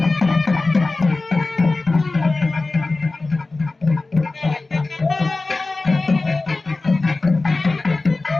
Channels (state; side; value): quieter; right; 3.4 dB